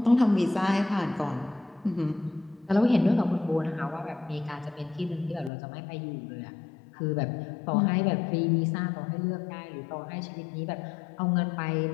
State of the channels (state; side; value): drops out; right; at 5.5 s